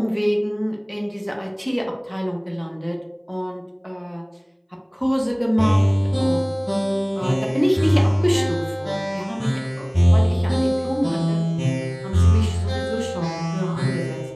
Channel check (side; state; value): both; identical; correlation 1.00